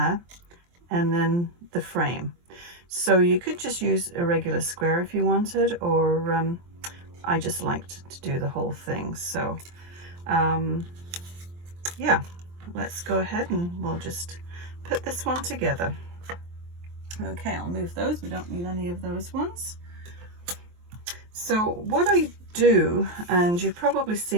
and then the frame. So you could just use a regular square if you wanted, or I just liked to do the whole thing. So yeah, let's go ahead and we'll just put this one together. Okay, I'll move those. We don't need any of those ones. So what I do, and you've probably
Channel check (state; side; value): late; left; 23 ms